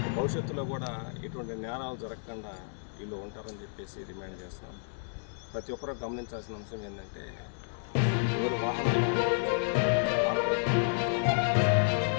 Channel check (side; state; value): right; silent; digital silence